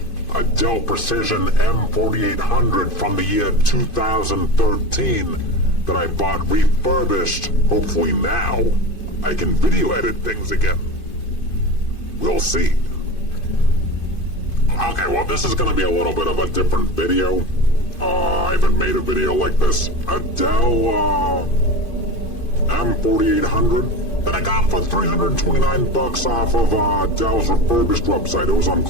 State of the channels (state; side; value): late; right; 2.5 ms